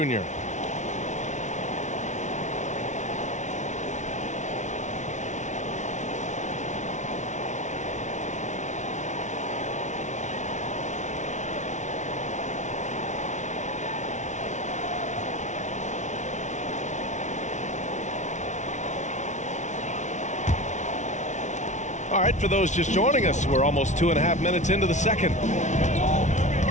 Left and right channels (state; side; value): late; right; 0.35 ms